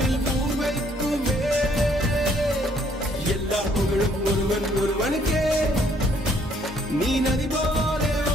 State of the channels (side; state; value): both; normal; correlation 0.65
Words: ஊர் வைக்குமே. எல்லா புகழும் ஒருவன் ஒருவனுக்கே. நீ நதி போல